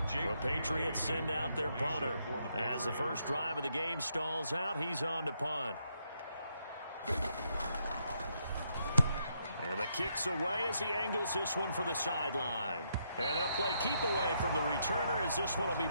The Patriots send out their punter. As the first drive of the game stalls out, he's on to punt. And the kick's away as he angles this one for the sideline. And they'll play keep away from the returner as this one will be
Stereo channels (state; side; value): inverted; both; correlation -0.77